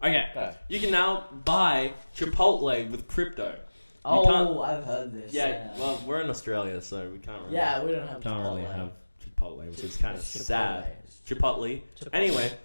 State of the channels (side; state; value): both; inverted; correlation -1.00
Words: Okay. Go. You can now buy Chipotle with crypto. Oh, can't- I've heard this. Yeah. Well, we're in Australia, so we can't really. Yeah, we don't have. Can't really Chipotle. have Chipotle, which is kind of It's sad. Chipotle. Chipotle. Anyway,